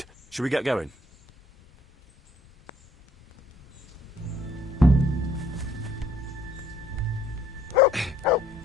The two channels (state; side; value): normal; both; correlation 0.62